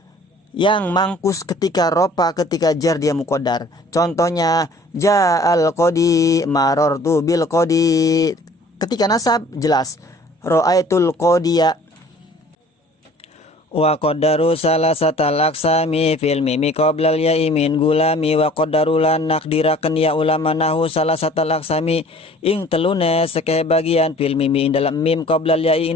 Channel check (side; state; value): both; normal; correlation 0.51